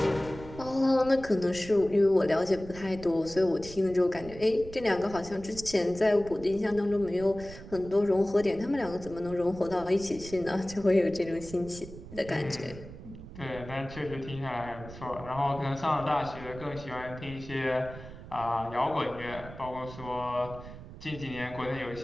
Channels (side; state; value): right; noise; rumble, 14 dB below the sound